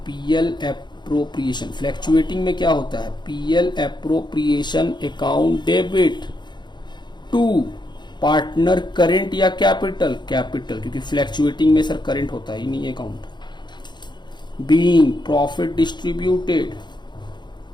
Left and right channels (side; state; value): right; late; 0.21 ms